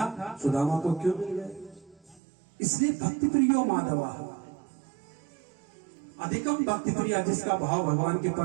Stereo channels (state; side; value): drops out; left; at 2.2 s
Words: सुदामा को क्यों मिल गए? इसलिए भक्ति प्रियो माधवा, अधिकम भक्ति प्रिया, जिसका भाव भगवान के